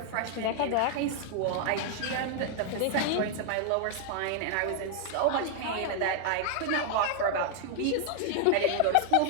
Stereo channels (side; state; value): both; different; correlation 0.00